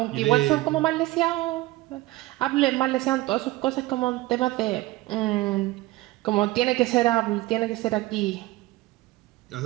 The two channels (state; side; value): quieter; left; 18.5 dB